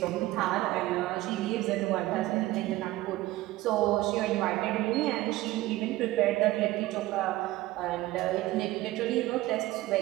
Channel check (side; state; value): left; quieter; 17.3 dB